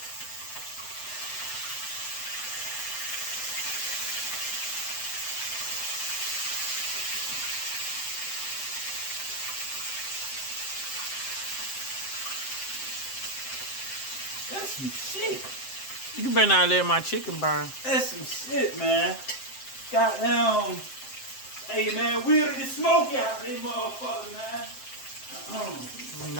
That's some shit. You better not let my chicken burn. That's some shit, man. Goddamn. Hey, man, weirder than smoke out these motherfuckers, man.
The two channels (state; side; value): late; right; 7.6 ms